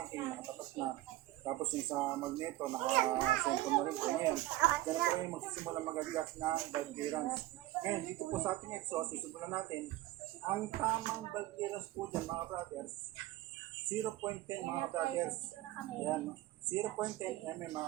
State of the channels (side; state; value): left; quieter; 16.5 dB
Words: nakatapat na. Tapos yung sa magneto, naka-center na rin po. Ngayon, dyan po kayo magsisimulang mag-adjust ng valve clearance. Ngayon, dito po sa ating exhaust, simulan natin. Ang tamang valve clearance po dyan mga brothers, 0.10 mga brothers. Ayan, 0.10 mm